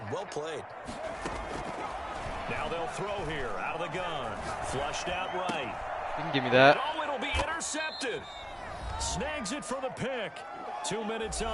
Well played. Now they'll throw here out of the gun. Flushed out right. You can give me that. Oh, it'll be intercepted. Snags it for the pick. 2 minutes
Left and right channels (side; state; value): both; identical; correlation 1.00